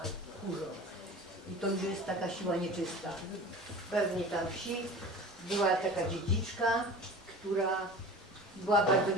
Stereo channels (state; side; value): normal; both; correlation 0.38